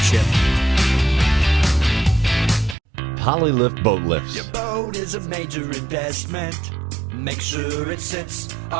Polylift boat lifts. Your boat is a major investment. Make sure it sits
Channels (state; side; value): drops out; left; at 2.8 s